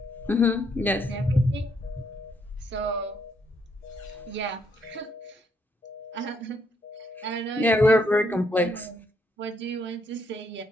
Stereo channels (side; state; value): both; normal; correlation 0.73